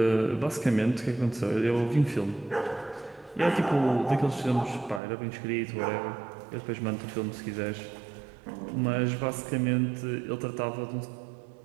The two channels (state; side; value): drops out; left; at 5.0 s